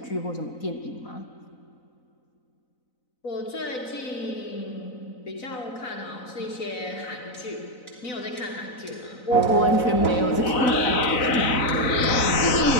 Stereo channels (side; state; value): right; late; 4.0 ms